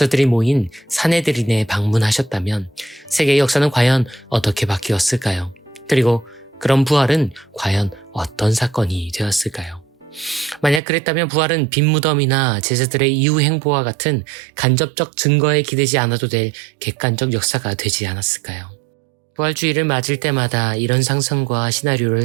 모인 사네드린에 방문하셨다면 세계의 역사는 과연 어떻게 바뀌었을까요? 그리고 그런 부활은 과연 어떤 사건이 되었을까요? 만약 그랬다면 부활은 빈무덤이나 제자들의 이후 행보와 같은 간접적 증거에 기대지 않아도 될 객관적 역사가 되지 않았을까요? 부활주의를 맞을 때마다 이런 상상과 시나리오를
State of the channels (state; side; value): drops out; left; at 10.8 s